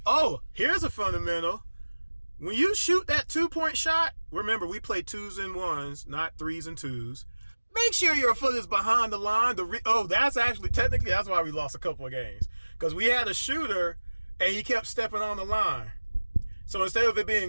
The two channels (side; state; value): both; inverted; correlation -1.00